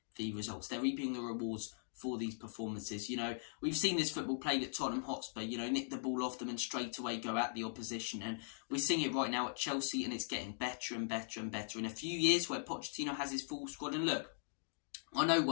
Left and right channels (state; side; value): silent; right; digital silence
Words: the results. They're reaping the rewards for these performances. You know, we've seen this football played at Tottenham Hotspur, you know, nick the ball off them and straight away go at the opposition. And we're seeing it right now at Chelsea, and it's getting better and better and better. In a few years where Pochettino has his full squad, and look, I know